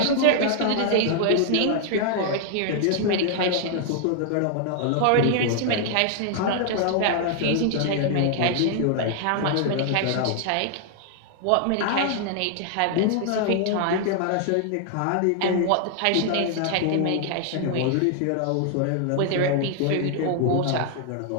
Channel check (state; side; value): different; both; correlation 0.00